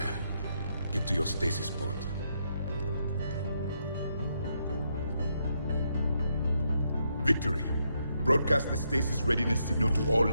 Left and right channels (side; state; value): both; inverted; correlation -0.78